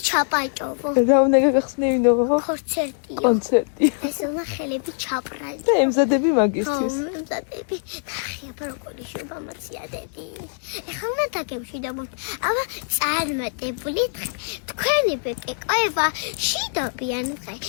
ჩაპაჭოვო. რა უნდა გაგახსნევინო? კონცერტიო. კონცერტი. ეს უნდა ხელები ჩაპრაზო. და ემზადები მაგისთვის. ემზადები. ხია პროკოლი შუბამაცია დედი. ეხლა უნდა დაგემშვიდობოთ. აბა წარმატებული დღე. თქვენი ბეკეკოება შიდობიან დღე.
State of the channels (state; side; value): silent; right; 63 dB below the other